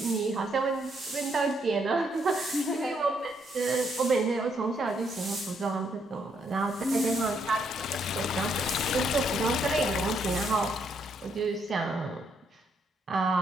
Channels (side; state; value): both; normal; correlation 0.74